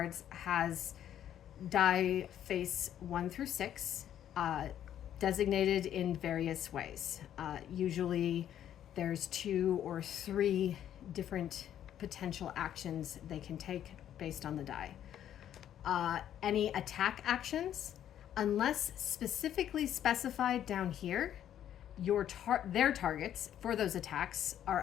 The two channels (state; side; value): quieter; right; 10.6 dB